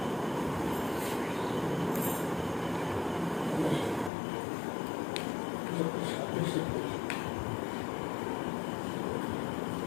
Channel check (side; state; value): right; drops out; at 4.1 s